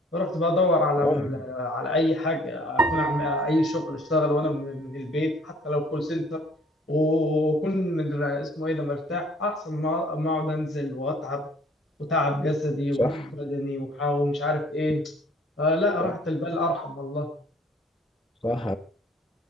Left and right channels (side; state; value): both; normal; correlation 0.57